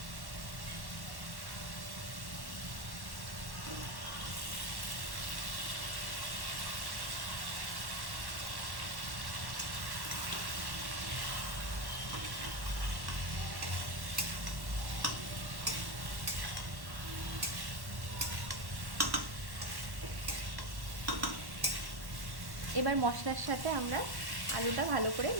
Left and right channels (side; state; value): left; late; 1.1 ms